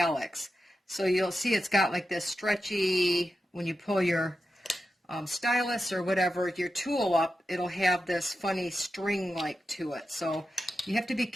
So you'll see it's got like this stretchy, when you pull your stylus or whatever, your tool up, it'll have this funny string-like to it. So you have to be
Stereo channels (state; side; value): normal; both; correlation 0.90